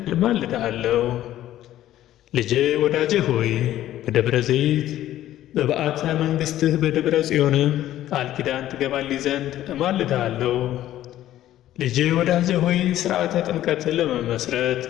እማልድሃለሁ። ልጄ ወዳጄ ሆይ በደብረ ዘይት በበዓተ መንግሥትህ በደብረ ጽዮንም ቃል ኪዳን ትገባልኝ ዘንድ እማልድሃለሁ። ልጄ ወዳጄ ሆይ ሥርዓተ ጥምቀትን ለመመስረት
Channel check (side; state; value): right; quieter; 13.2 dB